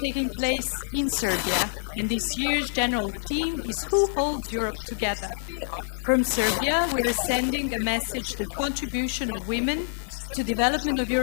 koji se organizuju širom Evrope i ovo je prvi događaj takve vrste koji se održava u Srbiji, a glavna tema ove godine je ko drži Evropu na okupu. Iz Srbije mi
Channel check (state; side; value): silent; right; digital silence